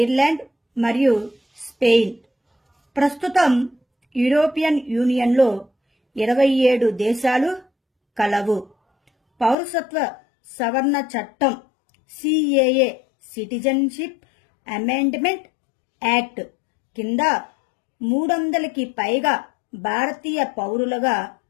మరియు స్పెయిన్. ప్రస్తుతం యూరోపియన్ యూనియన్లో 27 దేశాలు కలవు. పౌరసత్వ సవరణ చట్టం సిఏఏ సిటిజన్షిప్ అమెండ్మెంట్ యాక్ట్ కింద 300కి పైగా భారతీయ పౌరులుగా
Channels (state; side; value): drops out; right; at 9.6 s